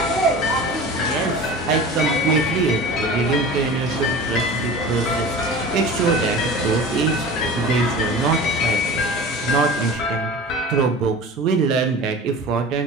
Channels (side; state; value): both; normal; correlation 0.36